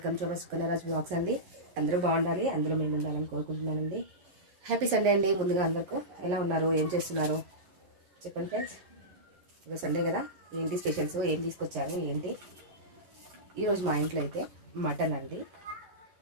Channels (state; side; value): late; left; 11 ms